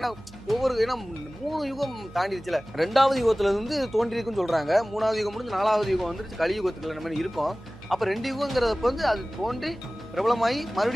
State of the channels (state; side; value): noise; right; hum, 20 dB below the sound